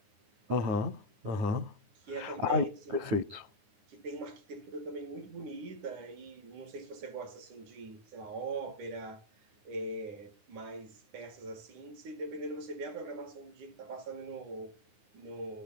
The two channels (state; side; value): late; left; 9.7 ms